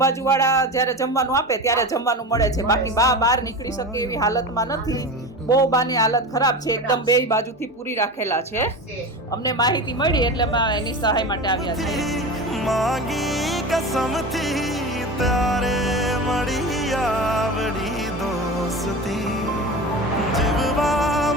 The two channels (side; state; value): both; normal; correlation 0.28